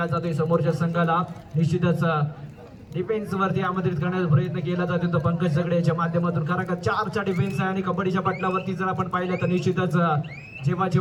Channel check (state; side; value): identical; both; correlation 1.00